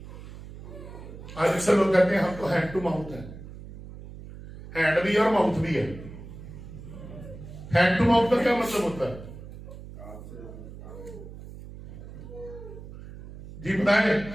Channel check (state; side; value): noise; right; hum, 14 dB below the sound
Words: आज अक्सर लोग कहते हैं हम तो हैंड टू माउथ है। हैंड भी है और माउथ भी है। हैंड टू माउथ का क्या मतलब होता है जी बताएं?